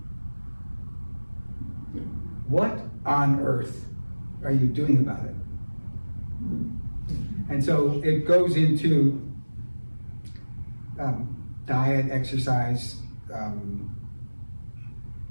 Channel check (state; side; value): inverted; both; correlation -1.00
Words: What on earth are you doing about it? And so it goes into diet, exercise,